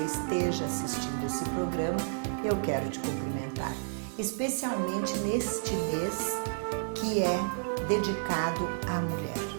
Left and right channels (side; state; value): left; silent; digital silence